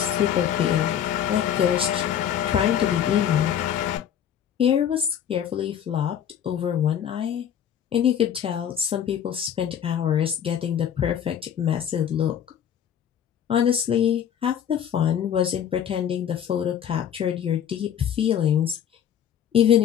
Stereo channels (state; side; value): quieter; right; 9.3 dB